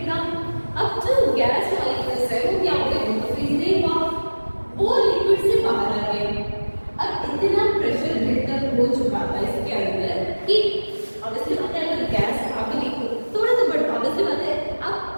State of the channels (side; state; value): both; inverted; correlation -1.00